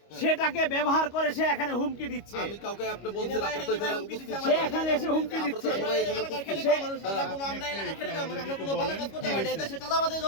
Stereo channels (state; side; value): late; right; 25 ms